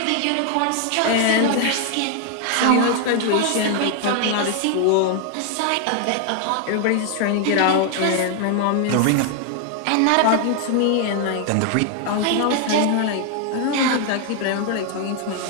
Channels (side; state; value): both; different; correlation 0.01